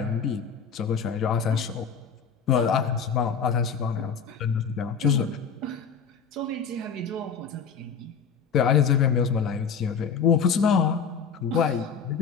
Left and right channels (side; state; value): right; quieter; 6.2 dB